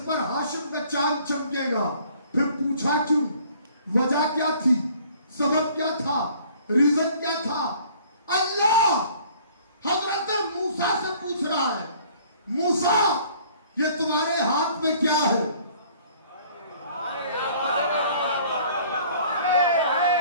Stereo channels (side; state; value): both; inverted; correlation -0.54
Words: پر ہاشم کا چاند چمکے گا؟ پھر پوچھا کیوں؟ وجہ کیا تھی؟ سبب کیا تھا؟ ریزن کیا تھا؟ اللہ حضرت موسیٰ سے پوچھ رہا ہے، موسیٰ یہ تمہارے ہاتھ میں کیا ہے؟